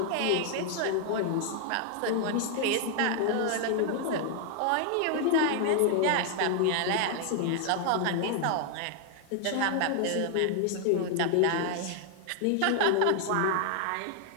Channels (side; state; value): both; different; correlation 0.00